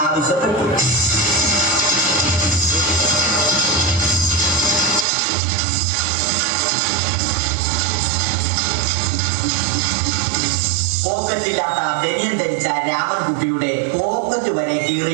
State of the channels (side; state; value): left; drops out; at 5.1 s